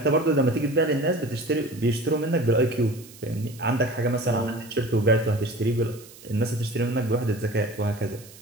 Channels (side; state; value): right; noise; hiss, 21 dB below the sound